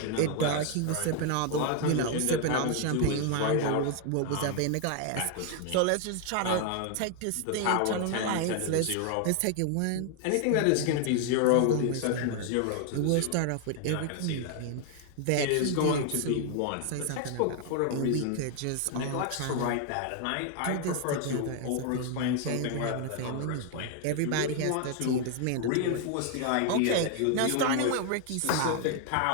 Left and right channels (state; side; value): different; both; correlation 0.00